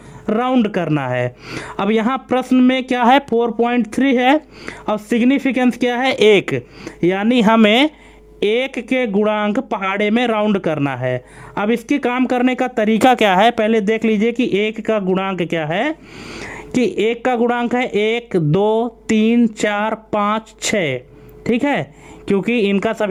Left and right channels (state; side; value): identical; both; correlation 1.00